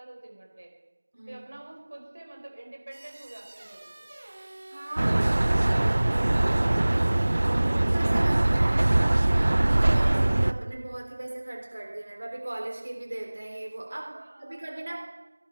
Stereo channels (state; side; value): inverted; both; correlation -1.00